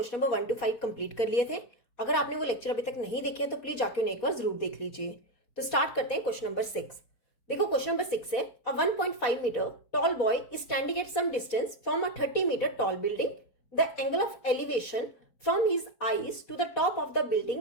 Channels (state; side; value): late; right; 4.1 ms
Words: नंबर 1 to 5 कंप्लीट कर लिए थे। अगर आपने वो लेक्चर अभी तक नहीं देखे हैं तो प्लीज जाके उन्हें एक बार जरूर देख लीजिए। तो स्टार्ट करते हैं क्वेश्चन नंबर 6। देखो क्वेश्चन नंबर 6 है, a 1.5 metre tall boy is standing at some distance from a 30 metre tall building. The angle of elevation from his eyes to the top of the building